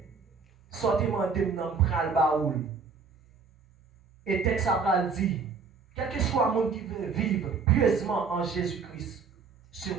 sortez-moi de dans le baoul. Et texte a dit, quel que soit le monde qui veut vivre pieusement en Jésus-Christ,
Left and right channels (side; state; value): left; quieter; 5.2 dB